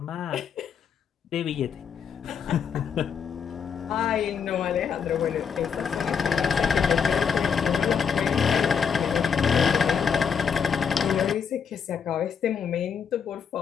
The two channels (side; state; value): right; quieter; 6.9 dB